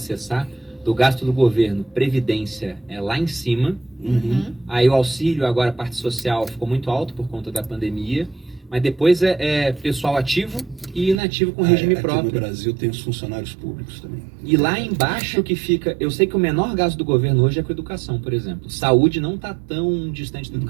do gasto do governo, Previdência é lá em cima. Aí o auxílio, agora a parte social, ficou muito alto por conta da pandemia. Mas depois é pessoal ativo e inativo com regime próprio. Aqui no Brasil tem os funcionários públicos também. E lá embaixo que fica... Eu sei que o menor gasto do governo hoje é com educação, por exemplo. Saúde não está tão distante da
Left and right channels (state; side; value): drops out; left; at 11.2 s